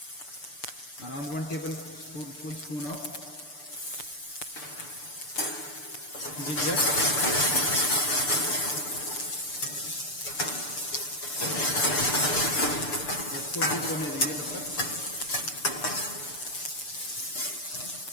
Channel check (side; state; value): right; late; 6.8 ms